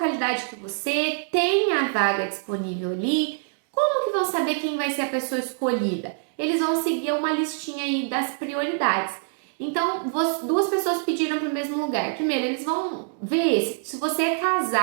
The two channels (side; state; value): left; silent; digital silence